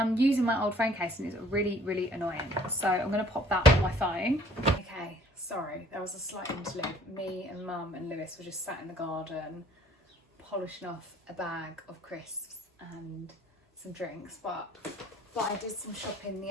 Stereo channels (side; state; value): both; normal; correlation 0.57